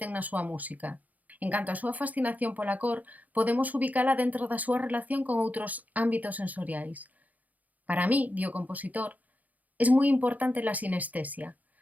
na súa música. En canto á súa fascinación pola cor, podemos ubicala dentro da súa relación con outros ámbitos sensoriais. Para mí, di o compositor, es moi importante la sinestesia.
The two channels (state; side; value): late; left; 0.078 ms